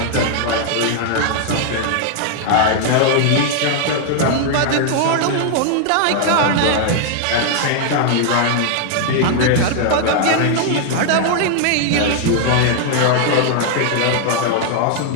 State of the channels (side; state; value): both; different; correlation 0.00